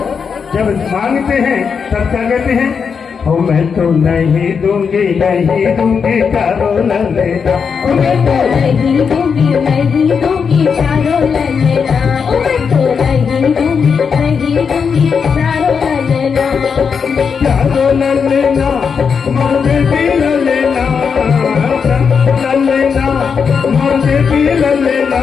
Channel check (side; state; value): right; quieter; 6.1 dB